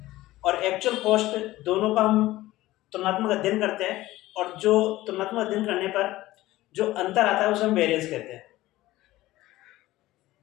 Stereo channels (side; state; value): right; quieter; 16.9 dB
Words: और एक्चुअल कॉस्ट दोनों का हम तुलनात्मक अध्ययन करते हैं और जो तुलनात्मक अध्ययन करने पर जो अंतर आता है उसे हम वेरिएंस कहते हैं।